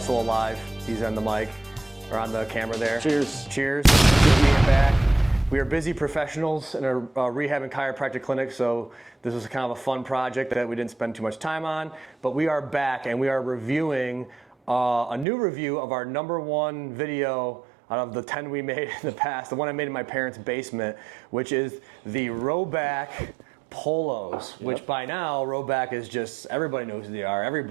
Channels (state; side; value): drops out; left; at 15.2 s